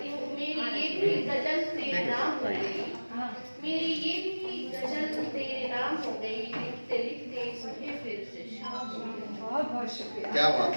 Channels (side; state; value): both; inverted; correlation -1.00